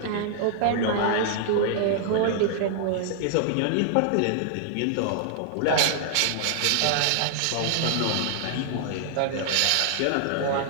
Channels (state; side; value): different; both; correlation -0.01